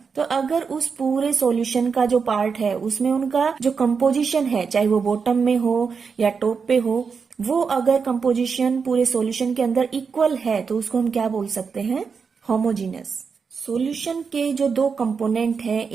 तो अगर उस पूरे सॉल्यूशन का जो पार्ट है उसमें उनका जो कंपोजिशन है, चाहे वो बॉटम में हो या टॉप पे हो, वो अगर कंपोजिशन पूरे सॉल्यूशन के अंदर इक्वल है तो उसको हम क्या बोल सकते हैं? होमोजेनियस। सॉल्यूशन के जो दो कंपोनेंट हैं,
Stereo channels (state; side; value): quieter; left; 5.6 dB